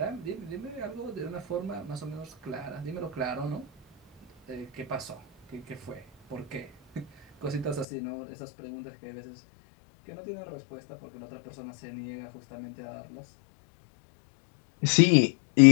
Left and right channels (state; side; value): drops out; right; at 7.9 s